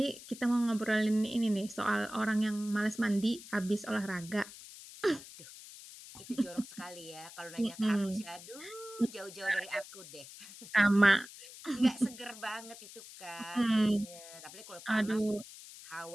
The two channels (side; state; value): left; noise; hiss, 16 dB below the sound